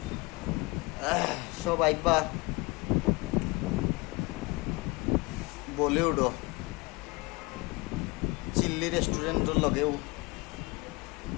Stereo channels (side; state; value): right; quieter; 25.3 dB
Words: সব আইবা বলিউডও চিল্লি রেস্টুরেন্টের লগেও